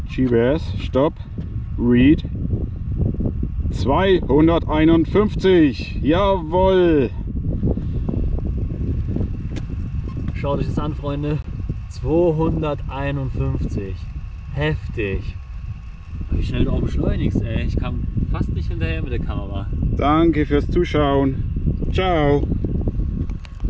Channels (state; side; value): identical; both; correlation 1.00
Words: GPS, Stopp, Read 251, jawohl! Schaut euch das an, Freunde. 251. Heftig. Wie schnell du auch beschleunigst, ey. Ich kam fast nicht hinterher mit der Kamera. Danke fürs Zuschauen, ciao!